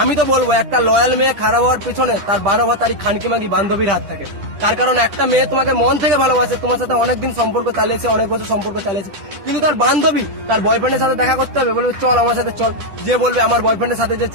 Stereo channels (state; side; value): late; left; 10 ms